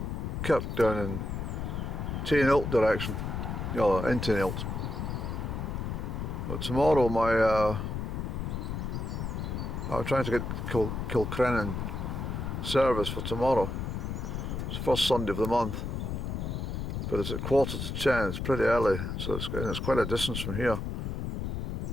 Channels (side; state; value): left; noise; rumble, 3 dB below the sound